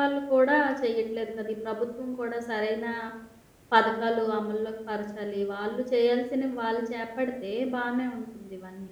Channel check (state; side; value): identical; both; correlation 1.00